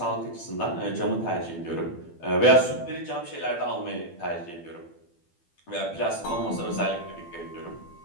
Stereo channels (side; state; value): right; late; 12 ms